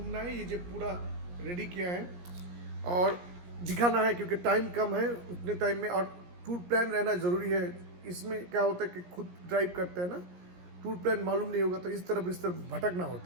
है ये जो पूरा रेडी किया है और दिखाना है, क्योंकि टाइम कम है उतने टाइम में, और टूर प्लान रहना ज़रूरी है। इसमें क्या होता है कि खुद ड्राइव करते हैं ना, टूर प्लान मालूम नहीं होगा तो इस तरफ भटकना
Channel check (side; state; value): left; late; 17 ms